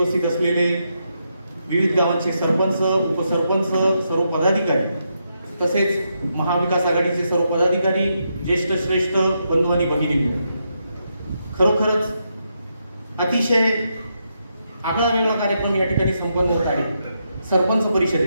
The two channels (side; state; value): both; inverted; correlation -0.82